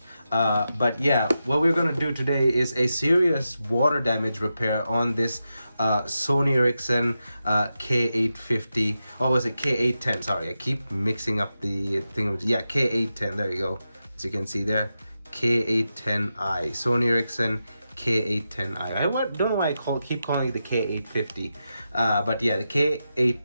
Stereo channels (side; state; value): both; inverted; correlation -0.89